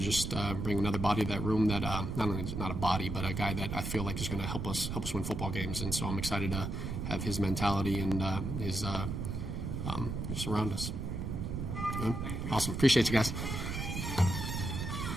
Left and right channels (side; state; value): right; noise; rumble, 3 dB below the sound